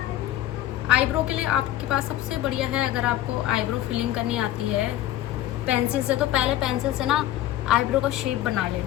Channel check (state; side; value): quieter; right; 13.7 dB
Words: आईब्रो के लिए आपके पास सबसे बढ़िया है, अगर आपको आईब्रो फिलिंग करनी आती है पेंसिल से, तो पहले पेंसिल से ना आईब्रो का शेप बना ले,